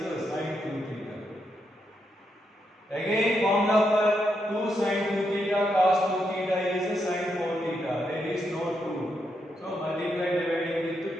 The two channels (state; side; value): normal; both; correlation 0.81